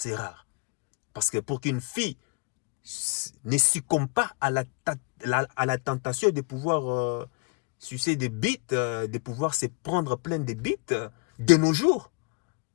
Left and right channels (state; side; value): quieter; right; 33.9 dB